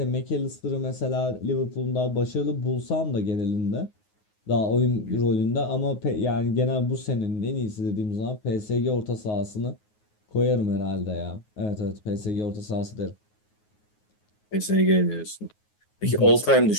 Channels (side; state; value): right; late; 9.5 ms